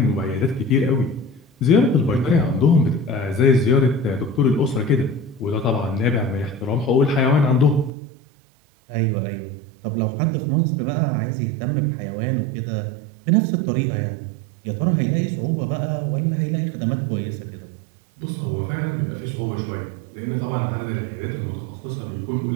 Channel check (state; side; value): drops out; left; at 7.9 s